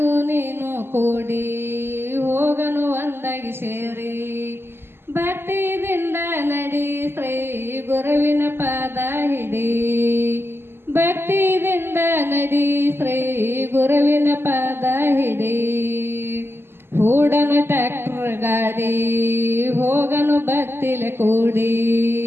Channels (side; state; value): left; late; 0.11 ms